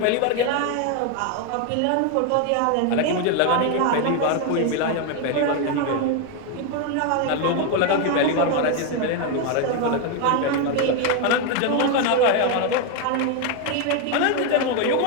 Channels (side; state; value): both; different; correlation 0.01